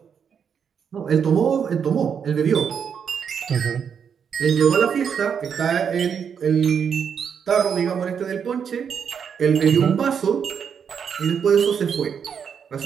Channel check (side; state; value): left; quieter; 7.2 dB